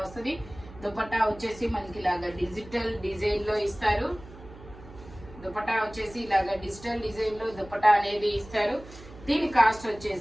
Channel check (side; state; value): right; noise; hum, 18 dB below the sound